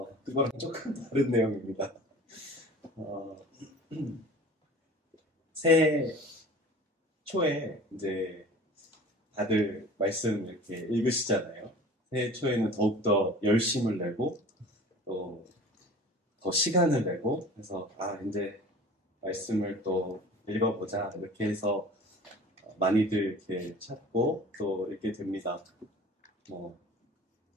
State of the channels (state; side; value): normal; both; correlation 0.43